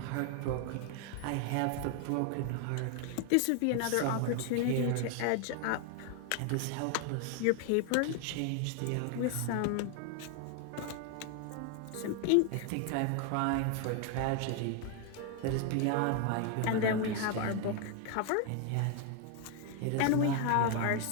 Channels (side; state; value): both; different; correlation 0.00